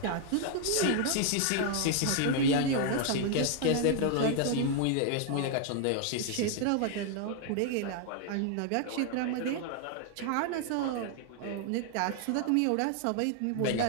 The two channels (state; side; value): different; both; correlation 0.00